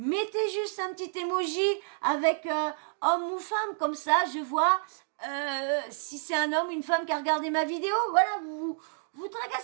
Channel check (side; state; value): left; silent; digital silence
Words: juste un petit emoji avec homme ou femme, comme ça je vois si c'est un homme ou une femme qui a regardé ma vidéo. Voilà, vous